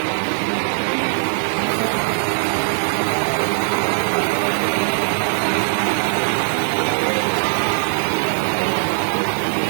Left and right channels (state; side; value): silent; left; digital silence